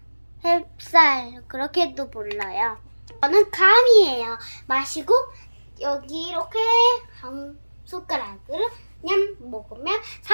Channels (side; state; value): both; inverted; correlation -1.00